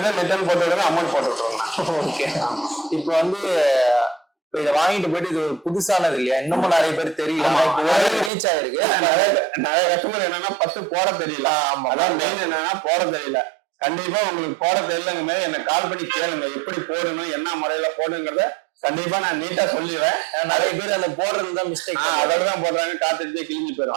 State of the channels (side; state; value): left; drops out; at 8.3 s